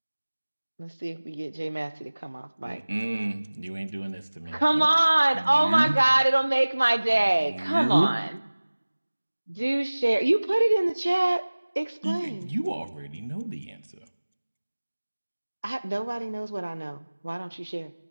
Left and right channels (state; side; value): inverted; both; correlation -1.00